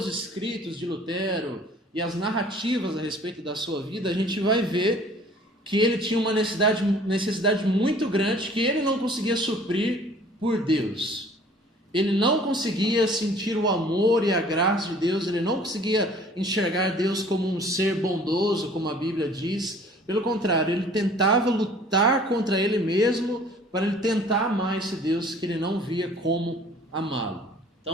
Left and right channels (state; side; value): normal; both; correlation 0.52